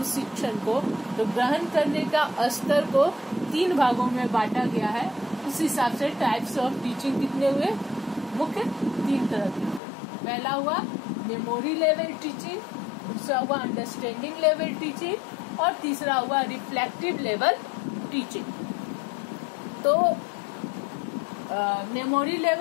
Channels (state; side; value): drops out; right; at 9.8 s